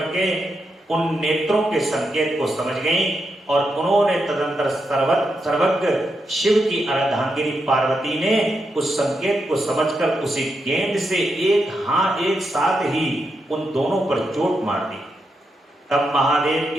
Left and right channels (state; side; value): normal; both; correlation 0.84